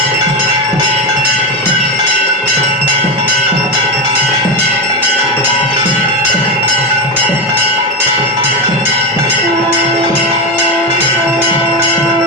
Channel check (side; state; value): both; normal; correlation 0.16